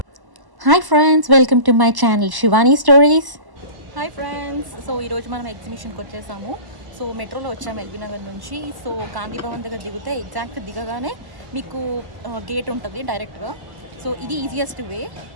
Hi friends, welcome to my channel Shivani stories. Hi friends, so ఈరోజు మనం ఎగ్జిబిషన్కి వచ్చేసాము. సో మెట్రోలో వచ్చాము ఎల్బీ నగర్ నుంచి. సో గాంధీ భవన్ దగ్గర దిగితే ఎగ్జాక్ట్ దిగగానే మీకు గేట్ ఉంటుంది డైరెక్ట్గా. సో ఇది easiest way.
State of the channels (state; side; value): late; left; 1.1 ms